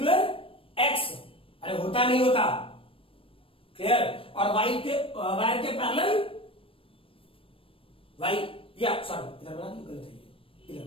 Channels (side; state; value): right; late; 0.26 ms